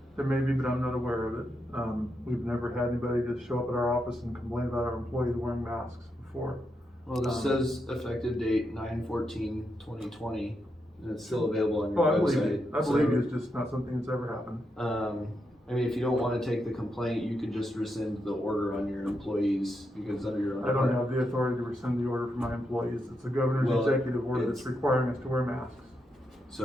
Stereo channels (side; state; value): both; normal; correlation 0.83